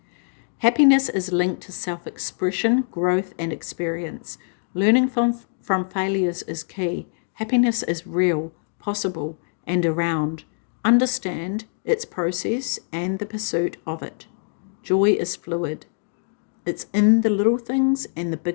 Happiness is linked to self-expression, growth, and experience. Learning from failures is key. Happiness is real, possible, and around. Understand its process and the pursuit of it. Joy is fluid. It's in the little things and the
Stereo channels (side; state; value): right; silent; digital silence